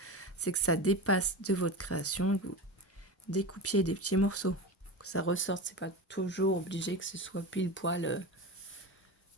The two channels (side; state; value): both; normal; correlation 0.24